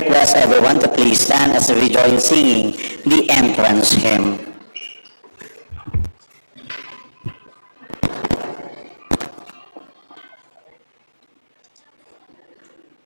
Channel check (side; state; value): both; inverted; correlation -1.00